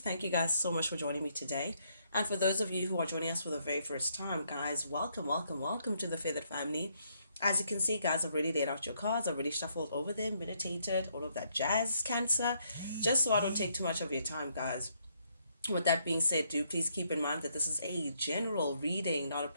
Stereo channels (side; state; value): both; inverted; correlation -0.73